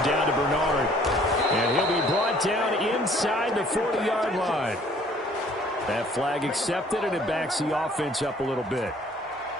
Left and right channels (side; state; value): both; normal; correlation 0.57